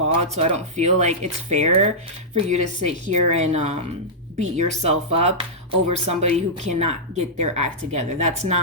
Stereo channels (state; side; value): normal; both; correlation -0.12